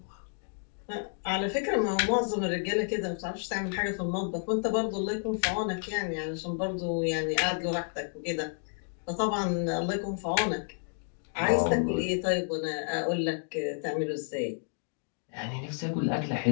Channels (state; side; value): silent; right; 57 dB below the other